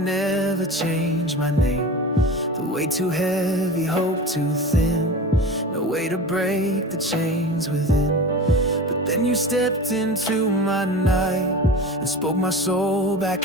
change my name. The weight too heavy, hope too thin, no way to break the chains within. But then you stepped into my night and spoke my soul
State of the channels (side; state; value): both; normal; correlation 0.33